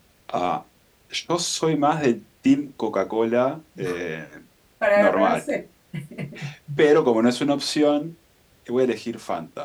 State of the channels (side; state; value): both; identical; correlation 1.00